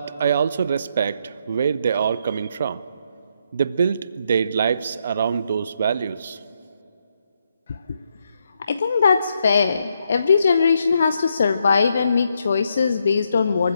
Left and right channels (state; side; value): inverted; both; correlation -0.78